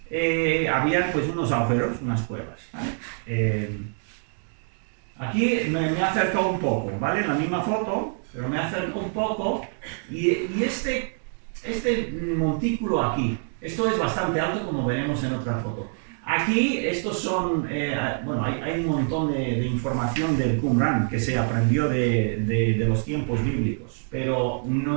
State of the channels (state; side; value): silent; left; 58 dB below the other